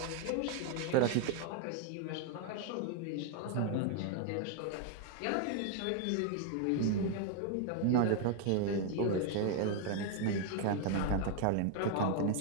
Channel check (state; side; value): different; both; correlation 0.00